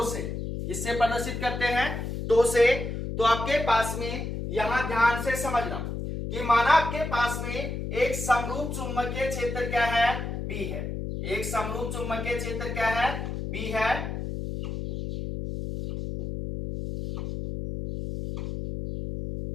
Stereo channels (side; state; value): left; noise; hum, 4 dB below the sound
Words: से। किससे प्रदर्शित करते हैं, टो से। तो आपके पास में यहां ध्यान से समझना कि माना आपके पास में एक समरूप चुंबकीय क्षेत्र क्या है, बी है। एक समरूप चुंबकीय क्षेत्र क्या है, बी है।